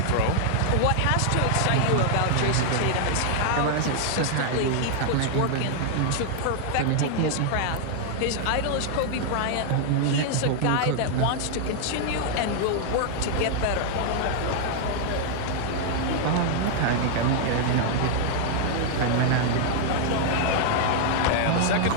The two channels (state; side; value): different; both; correlation 0.00